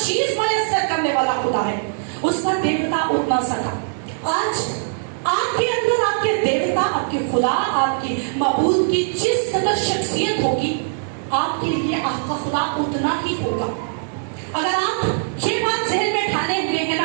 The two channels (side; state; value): left; silent; 65 dB below the other